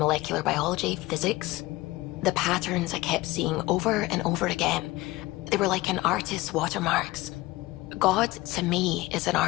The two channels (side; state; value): right; quieter; 19.7 dB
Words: biology, physics. The patterns I kept seeing over and over again, they were like an artist's watermarks. God, to me, is an